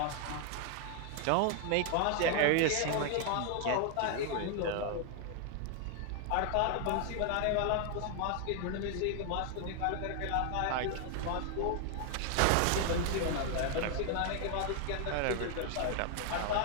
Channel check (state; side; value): different; both; correlation 0.00